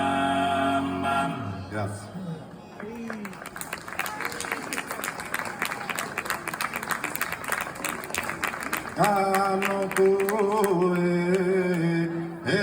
Grazie. Hanno cure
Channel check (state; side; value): identical; both; correlation 1.00